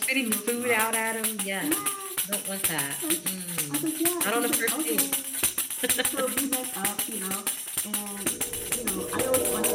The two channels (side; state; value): both; identical; correlation 1.00